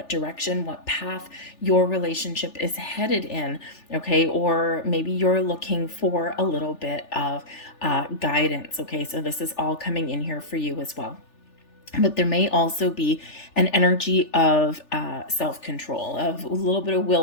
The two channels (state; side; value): late; right; 3.4 ms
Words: direction, what path your relationship is headed in. Okay, or maybe you're looking for a little bit of guidance. Okay, so this is all coming in here for you as well. But there may also be an energy of self-control, of a little bit of